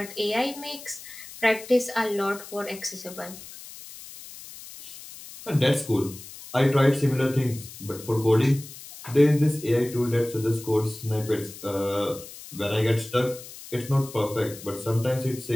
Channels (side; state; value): left; noise; hiss, 15 dB below the sound